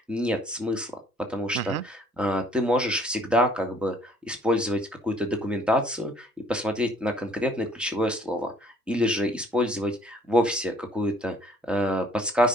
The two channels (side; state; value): both; normal; correlation 0.58